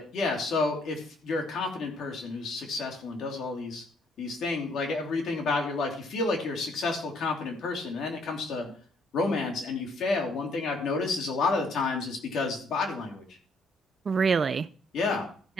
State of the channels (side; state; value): both; normal; correlation 0.66